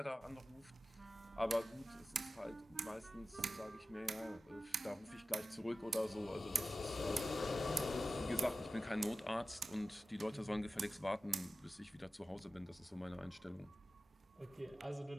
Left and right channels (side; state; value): both; normal; correlation 0.94